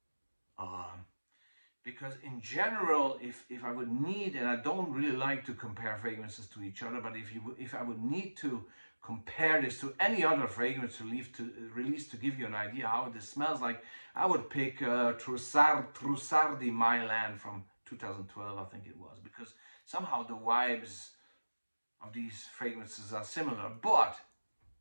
Because in general, if I would need, and I don't really like to compare fragrances to each other, but if I would need to compare this to any other fragrance release to give you an idea how this smells like, I would pick Trussardi di My Land from 2012, I think it was, because somehow the vibes of these fragrances are similar, but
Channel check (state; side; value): inverted; both; correlation -1.00